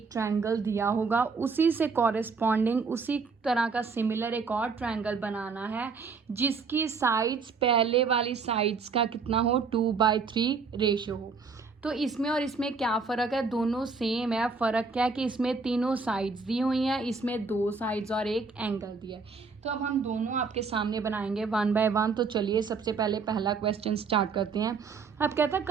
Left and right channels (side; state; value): left; quieter; 4.9 dB